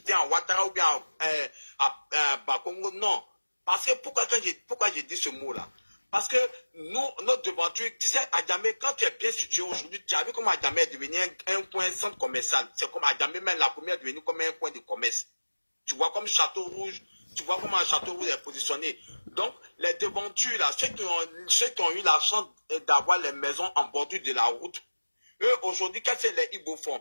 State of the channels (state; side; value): inverted; both; correlation -1.00